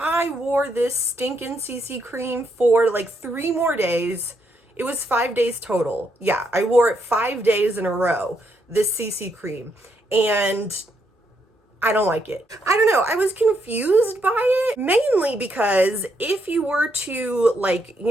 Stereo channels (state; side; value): normal; both; correlation 0.77